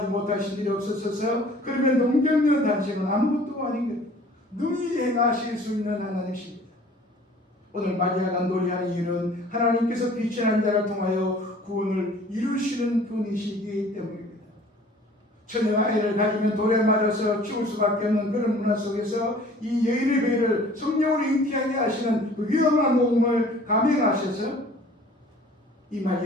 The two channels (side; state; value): both; normal; correlation 0.50